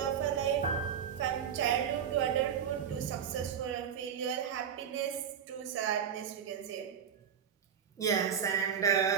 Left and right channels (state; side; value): quieter; left; 8.0 dB